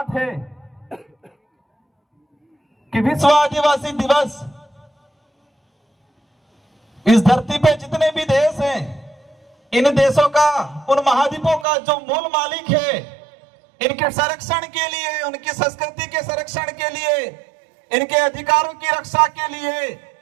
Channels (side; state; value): left; drops out; at 11.7 s